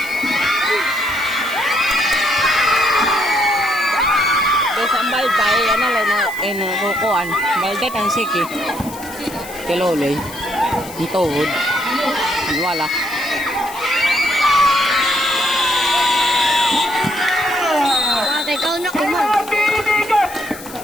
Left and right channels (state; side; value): noise; left; hiss, 16 dB below the sound